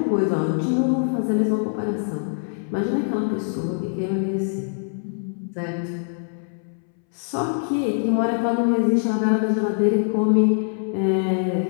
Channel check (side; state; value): right; silent; 63 dB below the other